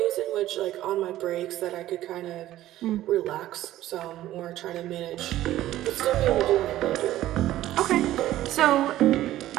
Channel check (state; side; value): quieter; left; 14.2 dB